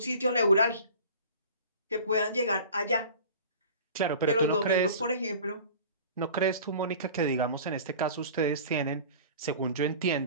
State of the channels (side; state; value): both; inverted; correlation -0.41